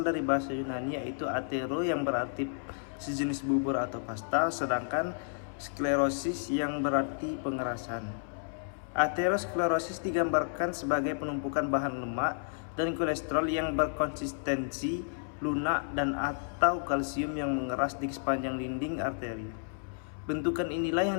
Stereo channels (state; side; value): silent; right; 57 dB below the other